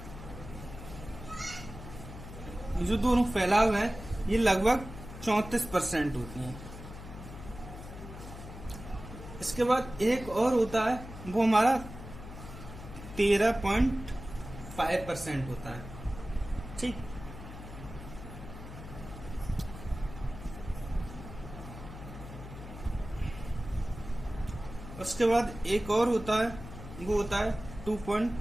जो दोनों फैलाव है ये लगभग 34% होती है। इसके बाद एक और होता है, वो हमारा 13.5% होता है। ठीक, उसके बाद एक और होता है, वो होता है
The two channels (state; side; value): noise; left; hum, 12 dB below the sound